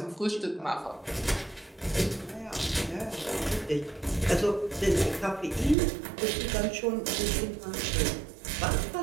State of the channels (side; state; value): left; drops out; at 5.8 s